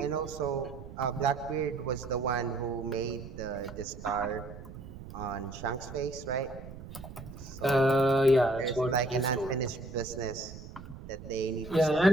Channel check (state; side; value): noise; right; rumble, 13 dB below the sound